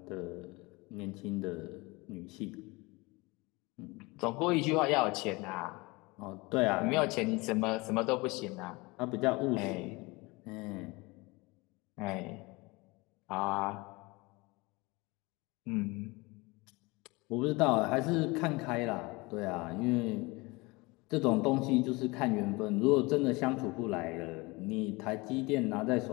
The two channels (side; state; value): right; quieter; 24.5 dB